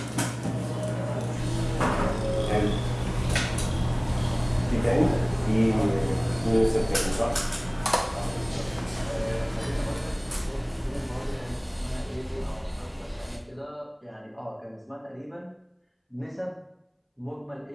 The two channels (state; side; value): identical; both; correlation 1.00